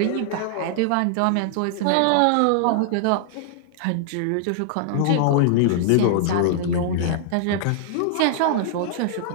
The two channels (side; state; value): both; different; correlation -0.01